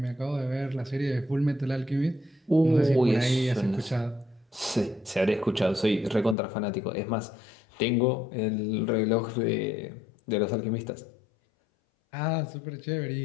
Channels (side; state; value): right; drops out; at 6.4 s